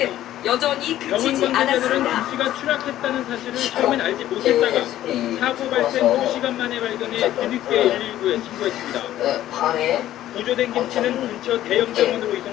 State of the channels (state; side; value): quieter; right; 13.2 dB